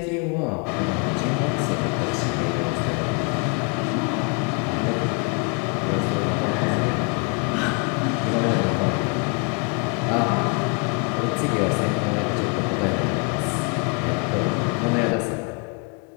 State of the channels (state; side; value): quieter; right; 34.3 dB